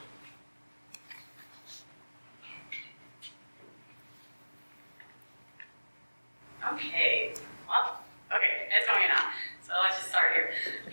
Okay, well, okay, it's going in now. So let's just start here.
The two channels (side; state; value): both; inverted; correlation -1.00